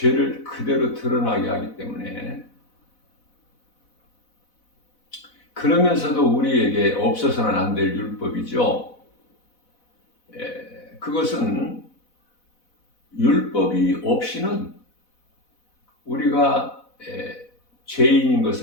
그대로 드러나게 하기 때문에, 그러면서도 우리에게 없어서는 안 될 율법이죠. 그것은 율법이 없이는 우리가 죄인인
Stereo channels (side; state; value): right; late; 4.1 ms